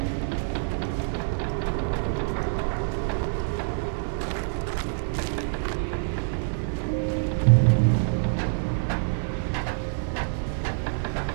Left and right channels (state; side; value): silent; left; 57 dB below the other